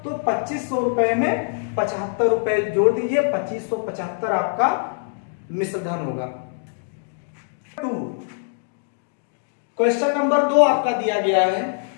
तो 2500 रुपए में 75 रुपए जोड़ दीजिए, 2575 आपका मिश्रधन होगा। क्वेश्चन नंबर 2 आपका दिया गया है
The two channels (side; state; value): right; silent; digital silence